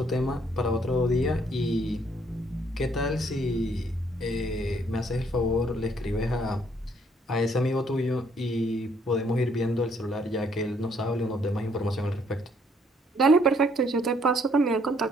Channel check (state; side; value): normal; both; correlation 0.67